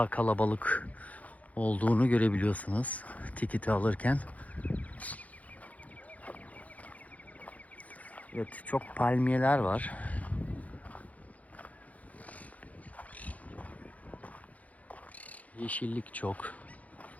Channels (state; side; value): late; right; 0.071 ms